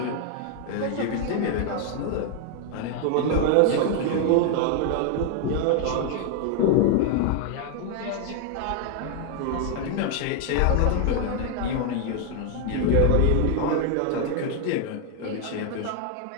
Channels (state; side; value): different; both; correlation 0.00